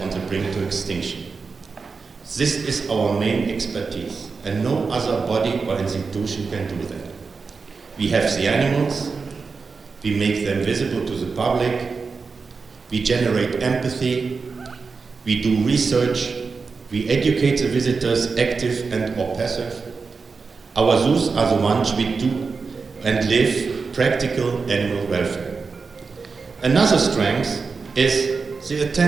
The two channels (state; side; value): quieter; left; 4.7 dB